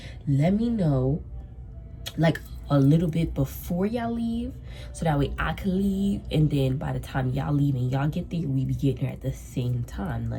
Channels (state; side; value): identical; both; correlation 1.00